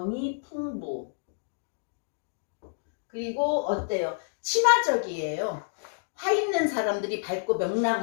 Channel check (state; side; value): silent; right; digital silence